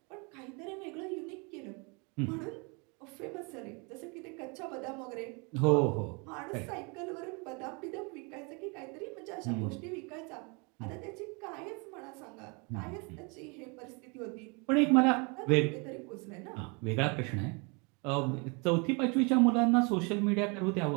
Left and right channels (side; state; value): left; quieter; 31.8 dB